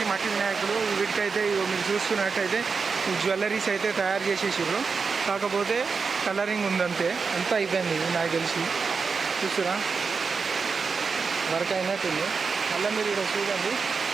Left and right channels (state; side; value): quieter; left; 5.1 dB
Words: మట్టి వినాయకులు. వీటికైతే ఇగో మీరు చూస్తున్నట్టయితే ఈ జ్యువెలరీస్ అయితే తయారు చేసేసారు, కాకపోతే కలరింగ్ ఉందంతే, అంతా అయిపోయింది ఇది నాకు తెలిసి. చూస్తురా వర్క్ అయినట్టుంది. మళ్ళీ మీరు ఇక్కడ చూడండి,